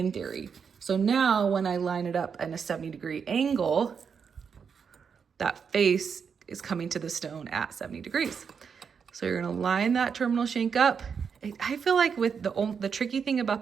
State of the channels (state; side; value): quieter; left; 6.4 dB